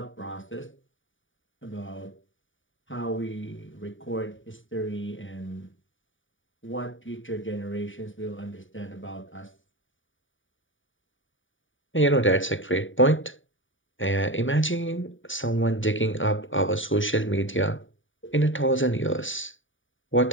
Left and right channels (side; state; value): right; late; 0.57 ms